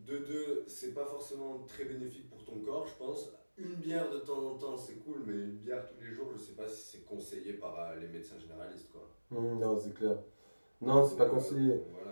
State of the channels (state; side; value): inverted; both; correlation -1.00